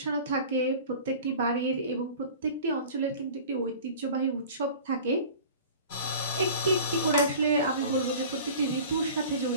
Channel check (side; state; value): both; inverted; correlation -0.41